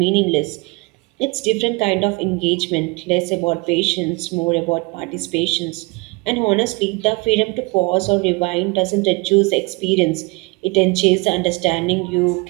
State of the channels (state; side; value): quieter; left; 26.7 dB